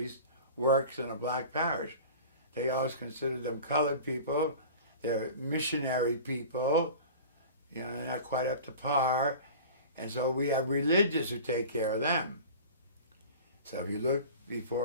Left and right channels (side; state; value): both; inverted; correlation -0.38